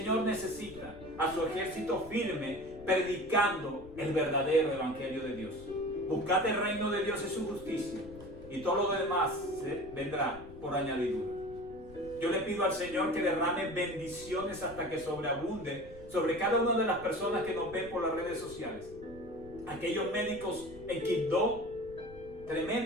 necesita a su ejército firme predicando el verdadero evangelio de Dios. Buscad el reino de Dios y su justicia, y todo lo demás vendrá por añadidura. Yo le pido al Señor que derrame bendiciones hasta que sobreabunde sobre cada una de las personas que nos ven por las redes sociales. Aquellos médicos en Quibdó,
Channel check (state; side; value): noise; left; rumble, 18 dB below the sound